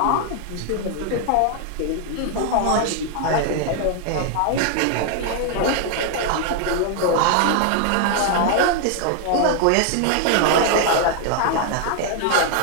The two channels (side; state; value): both; different; correlation 0.00